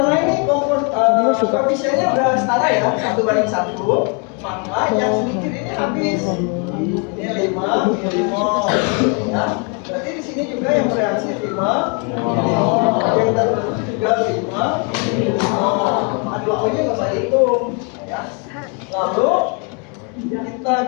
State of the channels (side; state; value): right; quieter; 36.2 dB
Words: ini koefisiennya udah setara ya, 1:1, maka yang sedikit ini habis. Ini 5 milimol ya. Berarti di sini juga yang bereaksi 5 milimol, yang terbentuk juga 5 milimol. Aduh-aduhnya nggak usah hitung ya. Lalu